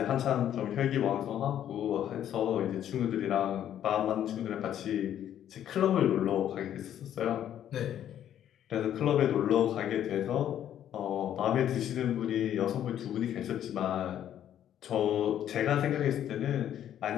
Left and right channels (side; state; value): right; quieter; 10.6 dB